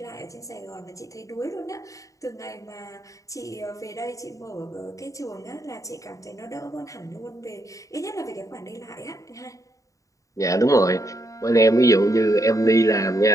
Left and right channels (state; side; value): late; right; 0.16 ms